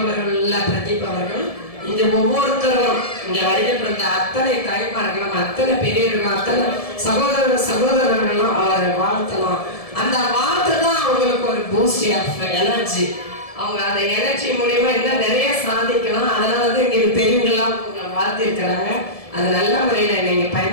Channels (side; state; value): right; late; 1.7 ms